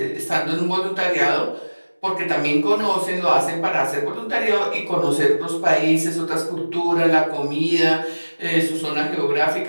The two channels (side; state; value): both; inverted; correlation -1.00